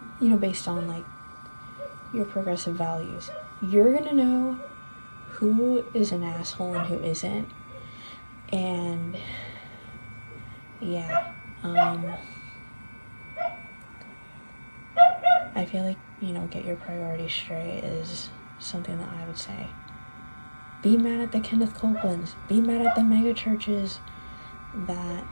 you know, based on, like, your progressive values. You're going to know who is an asshole and who isn't. And yeah, I feel like, you know, get your priorities straight is something that I would say. Be mad at the Kenneth Copelands. Be mad at the mega churches that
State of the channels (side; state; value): both; inverted; correlation -1.00